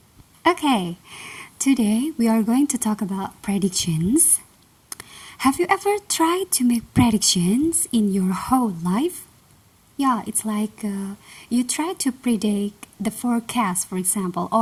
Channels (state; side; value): identical; both; correlation 1.00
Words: Okay, today we are going to talk about predictions. Have you ever tried to make predictions in your whole life? Yeah, it's like you try to predict the forecast, for example,